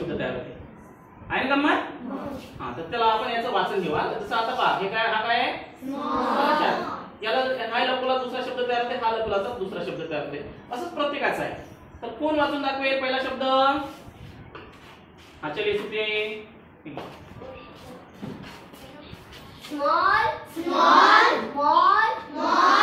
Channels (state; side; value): identical; both; correlation 1.00